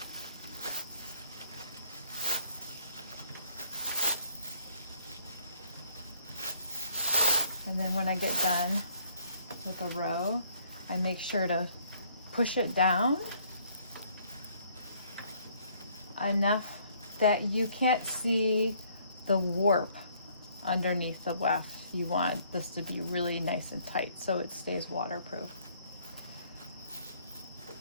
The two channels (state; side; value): inverted; both; correlation -0.62